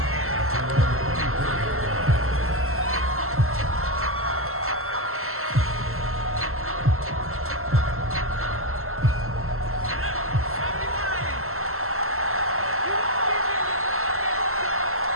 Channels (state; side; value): late; left; 0.62 ms